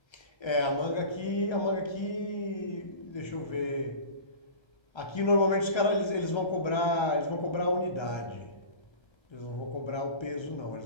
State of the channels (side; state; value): right; late; 1.3 ms